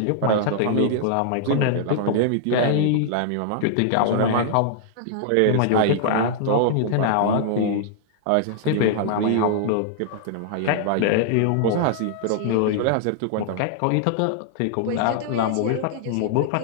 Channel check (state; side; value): different; both; correlation -0.01